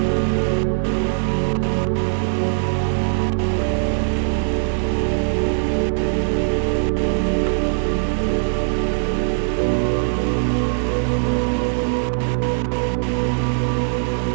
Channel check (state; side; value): silent; left; digital silence